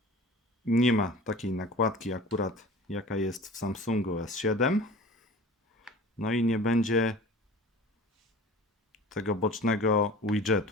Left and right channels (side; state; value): both; normal; correlation 0.41